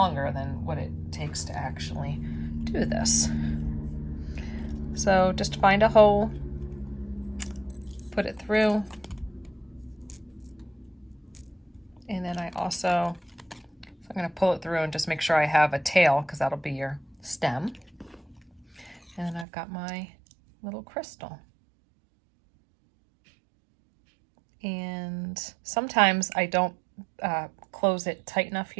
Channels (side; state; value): left; drops out; at 19.5 s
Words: than what it takes to actually do this. So just find a hole, put it through, and then I'm going to pull it through and just make sure I have a tail, because that'll be your stem. And then I've got my little crystal. And sometimes I don't close it tight enough